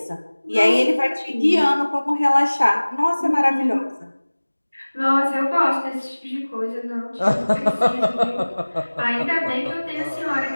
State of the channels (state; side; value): inverted; both; correlation -1.00